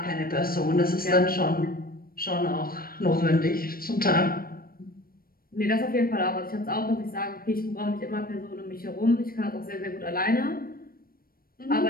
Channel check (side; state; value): right; late; 0.43 ms